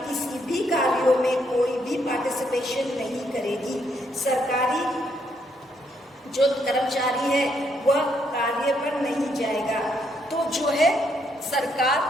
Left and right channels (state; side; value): normal; both; correlation 0.74